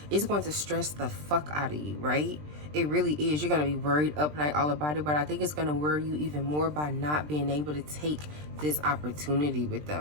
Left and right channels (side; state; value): left; late; 20 ms